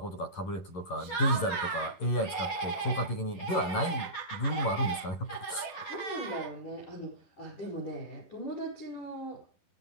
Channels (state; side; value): late; right; 11 ms